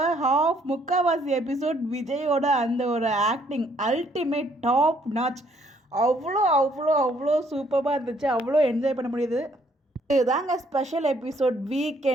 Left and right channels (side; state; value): both; normal; correlation 0.66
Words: முக்கால்வாசி எபிசோட் விஜயோட அந்த ஒரு ஆக்டிங் அல்டிமேட் டாப் நாச். அவ்வளோ அவ்வளோ அவ்வளோ சூப்பராக இருந்துச்சு, அவ்வளோ என்ஜாய் பண்ண முடியுது. இதுதாங்க ஸ்பெஷல் எபிசோட்.